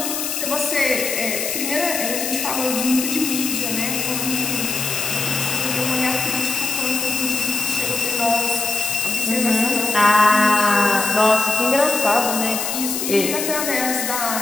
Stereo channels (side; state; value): left; noise; hiss, 2 dB below the sound